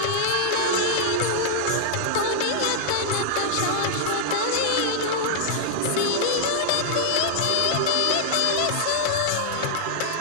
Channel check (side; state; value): both; different; correlation -0.01